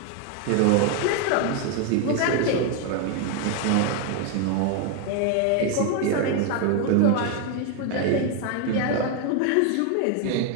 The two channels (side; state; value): both; different; correlation 0.01